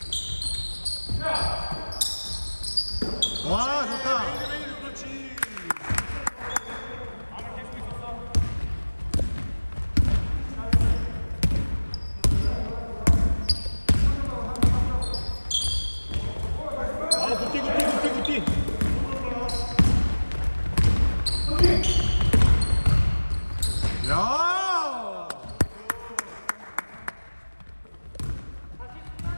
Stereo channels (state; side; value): inverted; both; correlation -1.00